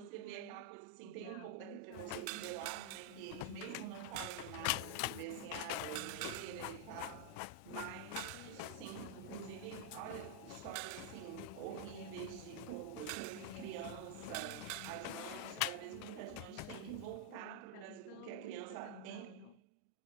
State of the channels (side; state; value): both; different; correlation 0.00